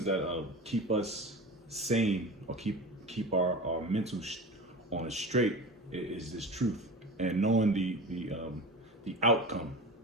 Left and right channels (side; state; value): both; normal; correlation 0.31